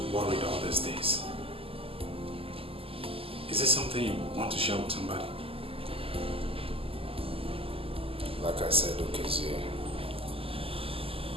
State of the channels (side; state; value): left; late; 0.27 ms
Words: worried all these days. Is this something you want to share with somebody? Like I said, okay, Zay,